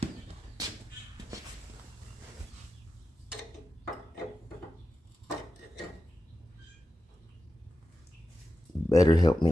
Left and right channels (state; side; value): normal; both; correlation 0.92